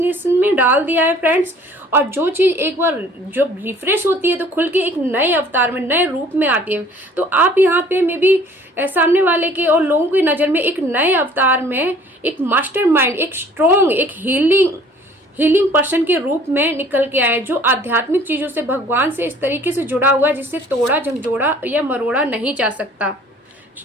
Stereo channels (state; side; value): normal; both; correlation 0.53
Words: में डाल दिया है फ्रेंड्स। और जो चीज एक बार जो रिफ्रेश होती है तो खुल के एक नए अवतार में, नए रूप में आती है। तो आप यहाँ पे मे बी सामने वाले के और लोगों की नजर में एक नए अवतार में एक मास्टरमाइंड, एक स्ट्रॉन्ग, एक हीलिंग पर्सन के रूप में निकल के आए, जो आध्यात्मिक चीजों से, भगवान से इस तरीके से जुड़ा हुआ है जिससे तोड़ा झंझोड़ा या मरोड़ा नहीं जा सकता।